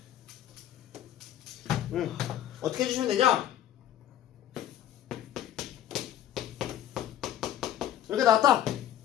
어떻게 해주시면 되냐? 이렇게 나왔다.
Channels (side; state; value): right; quieter; 11.6 dB